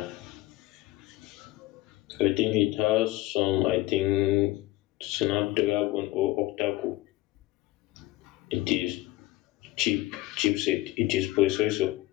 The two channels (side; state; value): right; quieter; 17.9 dB